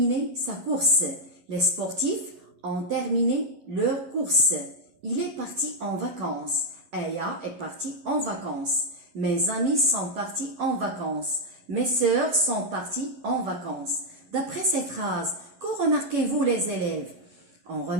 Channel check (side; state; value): left; late; 11 ms